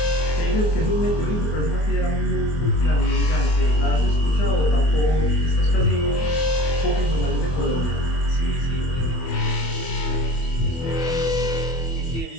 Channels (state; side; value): late; right; 24 ms